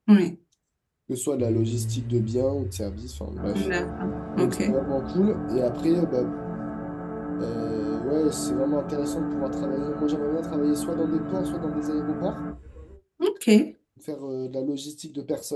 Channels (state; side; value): identical; both; correlation 1.00